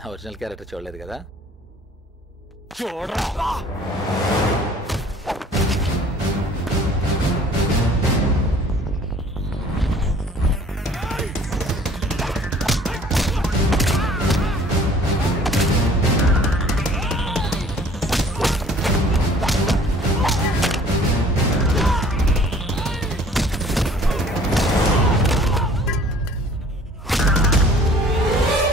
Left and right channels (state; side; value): normal; both; correlation 0.52